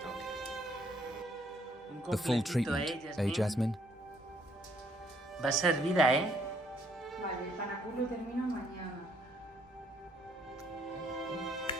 The full treatment, eh, Jasmine? Va servida, ¿eh? Vale, el panaculo termina mañana.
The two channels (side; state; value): both; normal; correlation 0.67